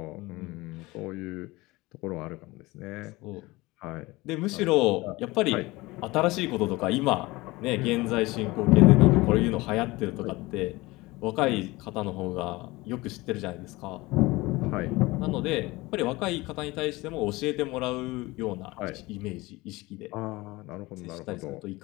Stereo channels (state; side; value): quieter; right; 21.3 dB